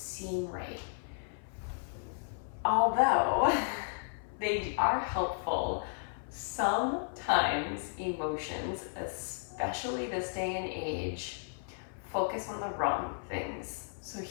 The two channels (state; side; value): silent; right; 55 dB below the other